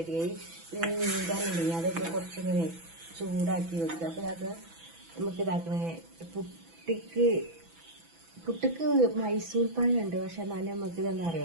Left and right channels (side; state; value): left; late; 6.0 ms